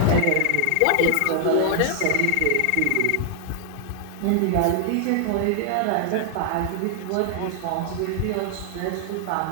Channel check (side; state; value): both; different; correlation 0.00